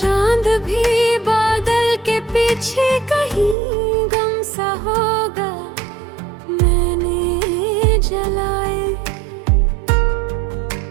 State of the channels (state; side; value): drops out; left; at 3.6 s